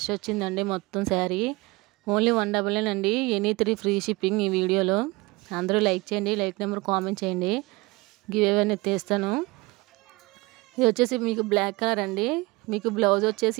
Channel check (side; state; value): left; quieter; 23.4 dB